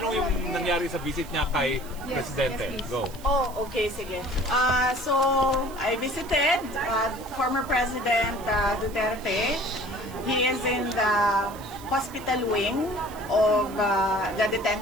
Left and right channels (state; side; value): noise; right; hiss, 19 dB below the sound